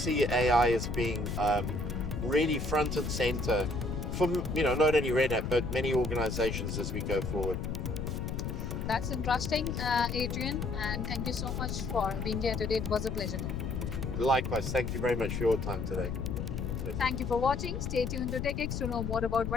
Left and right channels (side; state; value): left; noise; rumble, 3 dB below the sound